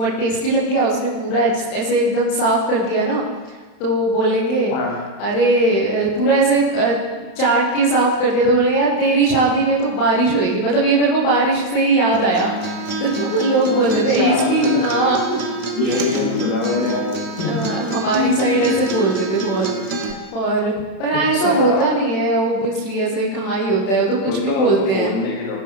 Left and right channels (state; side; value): late; right; 31 ms